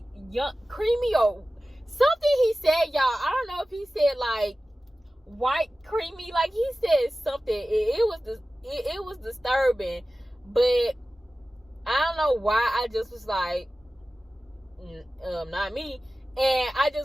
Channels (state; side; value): normal; both; correlation 0.96